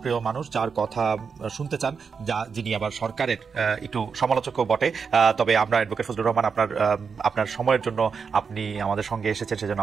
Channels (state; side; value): quieter; left; 5.8 dB